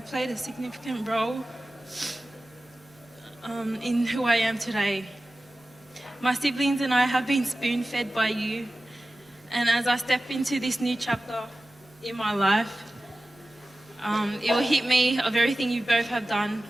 played a significant role in who I am today. My siblings and I have been spoon-fed by you, and as I step into this new chapter in my life, it will hit me of everything you both have done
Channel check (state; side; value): normal; both; correlation 0.96